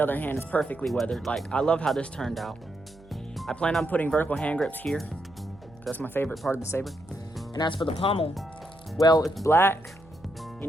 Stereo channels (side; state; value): right; noise; hum, 24 dB below the sound